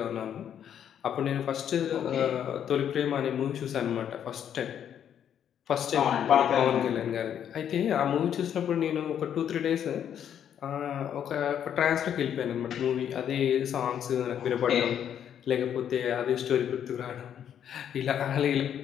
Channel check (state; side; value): quieter; right; 9.3 dB